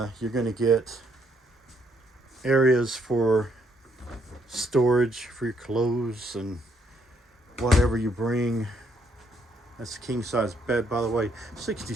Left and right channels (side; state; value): both; normal; correlation 0.71